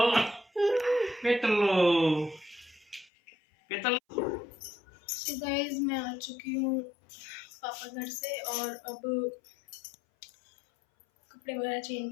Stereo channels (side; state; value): right; drops out; at 3.1 s